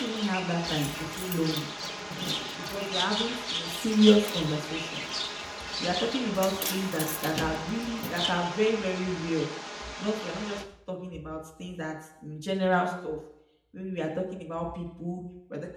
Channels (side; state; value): both; identical; correlation 1.00